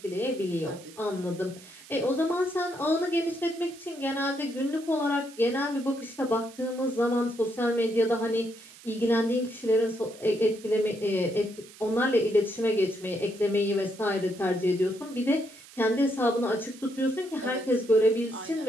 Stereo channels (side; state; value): right; noise; hiss, 20 dB below the sound